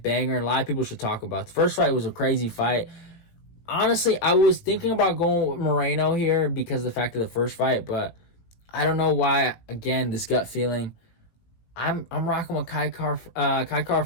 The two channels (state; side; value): late; right; 18 ms